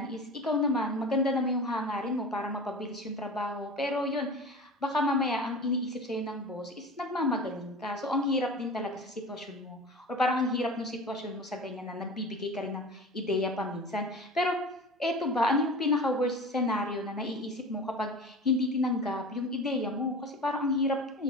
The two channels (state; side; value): normal; both; correlation 0.35